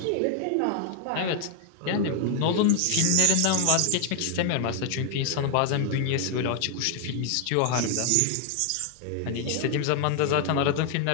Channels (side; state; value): both; different; correlation 0.00